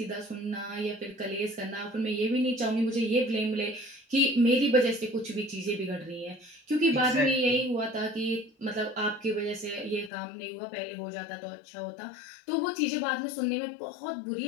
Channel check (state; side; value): drops out; right; at 10.1 s